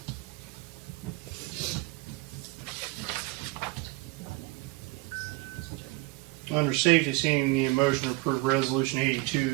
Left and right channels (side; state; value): left; quieter; 22.1 dB